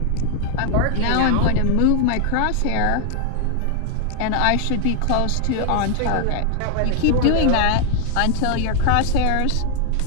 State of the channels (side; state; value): both; different; correlation 0.00